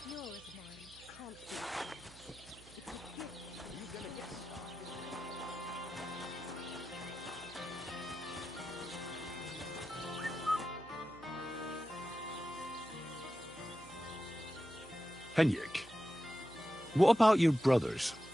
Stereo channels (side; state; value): right; noise; hum, 21 dB below the sound